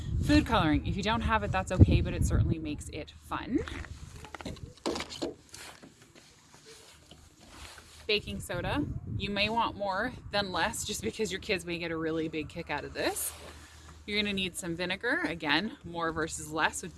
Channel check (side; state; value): both; identical; correlation 1.00